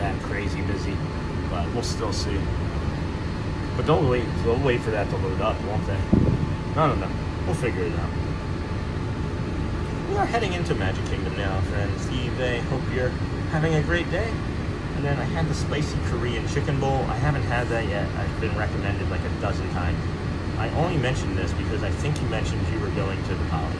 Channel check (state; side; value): identical; both; correlation 1.00